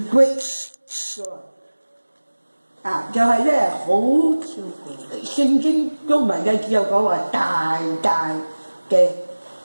great joy。就係咧好聖經中文嘅只有講話大大嘅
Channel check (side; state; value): both; inverted; correlation -1.00